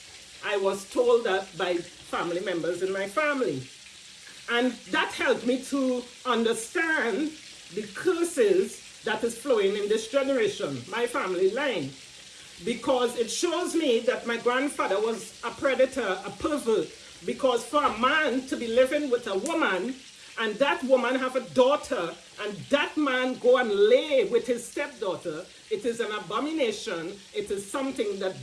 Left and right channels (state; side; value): identical; both; correlation 1.00